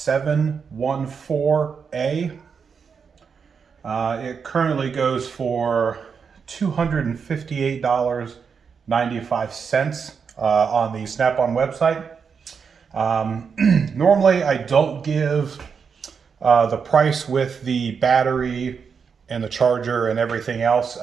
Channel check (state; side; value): quieter; left; 6.1 dB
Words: It currently goes for $258.95 on the Snap-on website. Normally I don't give the price with the battery and the charger and everything else,